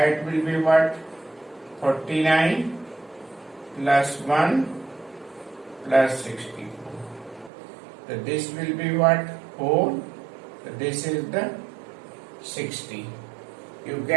will be what? 49 plus 1 plus 64. So this will be what? 4. So this is the 60. You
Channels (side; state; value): left; drops out; at 7.5 s